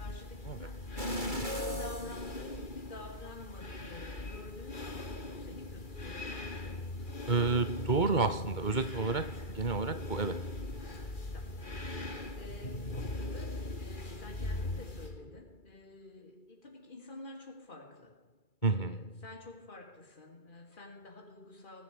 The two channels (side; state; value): right; late; 2.3 ms